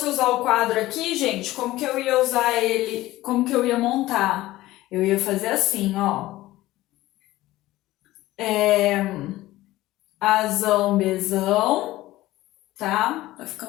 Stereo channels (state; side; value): quieter; right; 16.8 dB